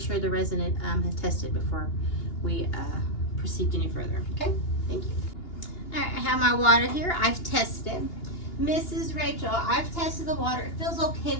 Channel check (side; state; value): right; late; 2.8 ms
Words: the resident has tested before we proceed any further. Okay, thank you. All right, I have my water here. I've tested it. Mrs. Rachel, I've tested the water. It feels okay